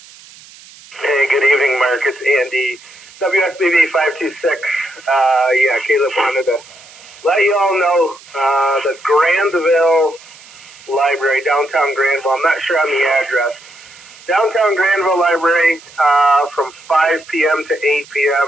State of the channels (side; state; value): right; noise; hiss, 22 dB below the sound